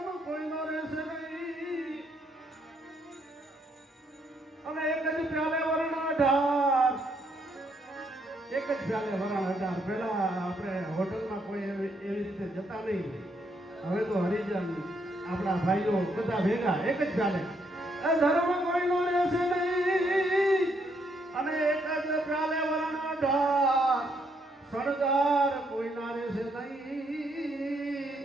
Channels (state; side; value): normal; both; correlation 0.74